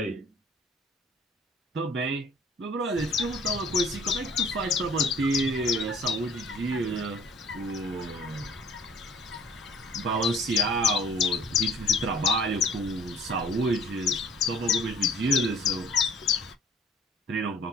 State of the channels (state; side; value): normal; both; correlation 0.54